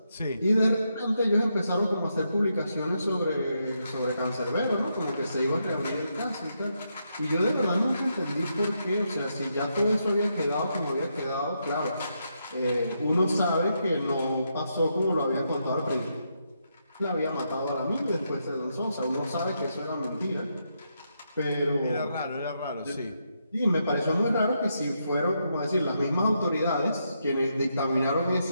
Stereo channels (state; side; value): inverted; both; correlation -0.81